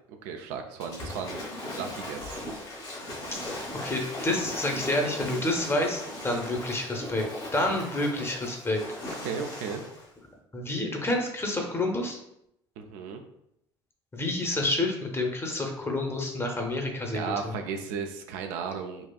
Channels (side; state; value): both; normal; correlation 0.38